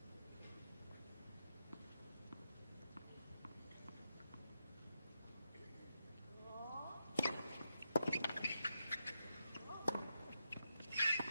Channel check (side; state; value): both; inverted; correlation -0.85